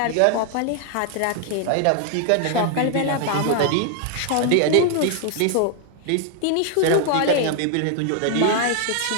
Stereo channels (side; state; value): both; different; correlation 0.00